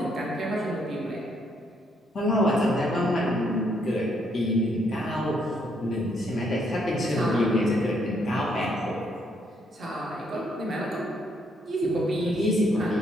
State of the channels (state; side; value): normal; both; correlation 0.72